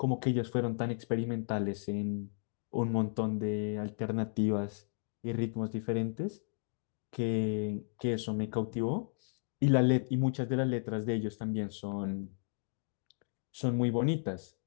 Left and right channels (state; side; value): silent; right; digital silence